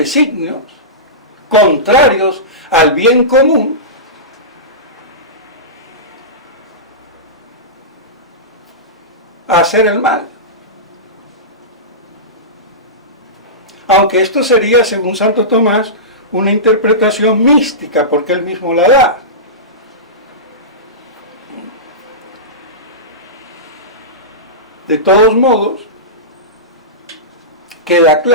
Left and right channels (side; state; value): both; normal; correlation -0.19